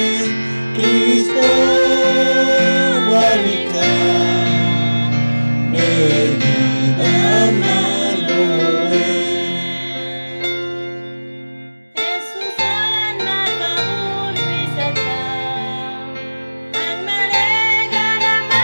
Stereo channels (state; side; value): inverted; both; correlation -1.00